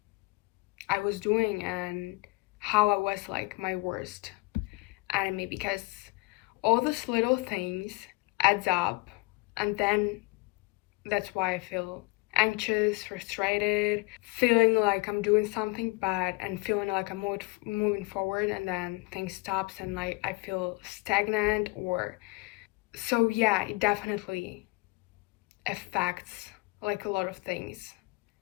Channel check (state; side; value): quieter; right; 25.1 dB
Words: I was doing and how I was like my worst enemy, because all those little things adds up, and then that's why I feel anxious, frustrated, feeling like I'm doing something bad and feeling like I'm moving forward, and then things stops and like I feel stagnant. Or so yeah, it definitely affects like a lot of things.